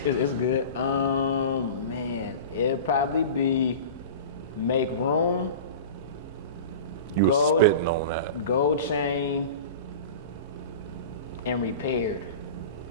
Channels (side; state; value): both; inverted; correlation -0.33